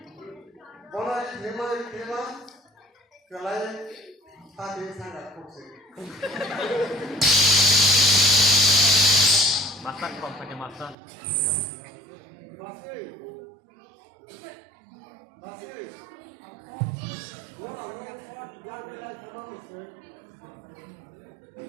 Bola terima, kelai hati sangat fokus. masak kok pakai masak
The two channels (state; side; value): drops out; left; at 11.0 s